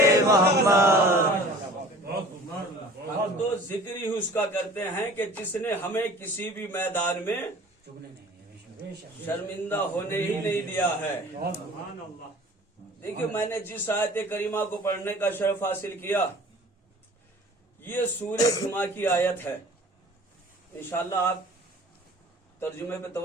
محمد. تو ذکر ہی اس کا کرتے ہیں کہ جس نے ہمیں کسی بھی میدان میں شرمندہ ہونے ہی نہیں دیا ہے. دیکھیے میں نے جس آیت کریمہ کو پڑھنے کا شرف حاصل کیا یہ سورہ جمعہ کی آیت ہے. انشاءاللہ آپ ترجمے پہ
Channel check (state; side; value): normal; both; correlation 0.45